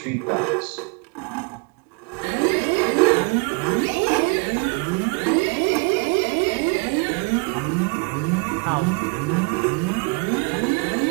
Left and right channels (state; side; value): quieter; left; 32.1 dB